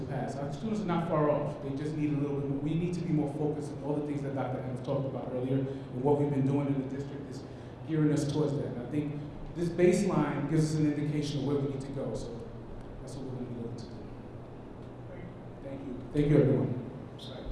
pass. Our students are not far off. They just need a little bit more. We need to be more focused on all the things that Dr. Adams talked about earlier, and what we've been doing in the district is gearing us towards that. And I think this baseline gives us an indication of where we need to go. So that's what we're going to be looking to do. Thank you. Thank you, everyone.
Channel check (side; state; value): both; identical; correlation 1.00